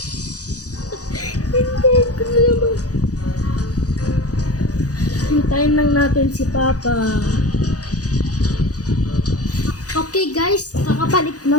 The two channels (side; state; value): right; late; 0.67 ms